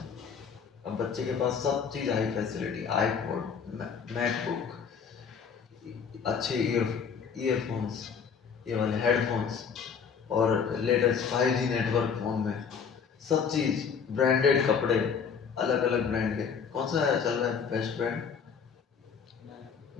अब बच्चे के पास सब चीज़ हाई फैसिलिटी, आईपॉड, मैकबुक, अच्छे ईयरफोन्स, ये वाले हेडफोन्स, और लेटेस्ट 5G नेटवर्क फ़ोन में, सब चीज़, ब्रांडेड कपड़े, अलग अलग ब्रांड के। कौन सा चल रहा है बेस्ट ब्रांड?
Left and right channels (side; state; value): right; quieter; 6.5 dB